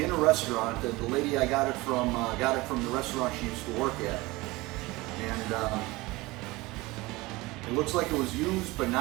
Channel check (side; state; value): left; quieter; 21.5 dB